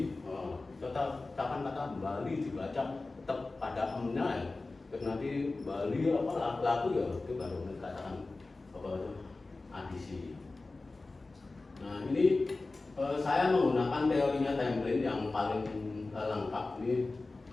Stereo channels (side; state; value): right; quieter; 3.4 dB